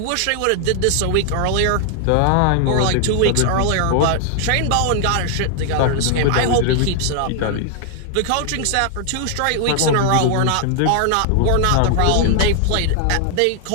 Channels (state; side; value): different; both; correlation 0.00